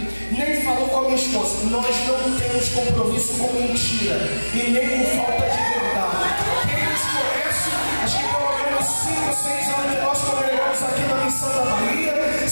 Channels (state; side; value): inverted; both; correlation -1.00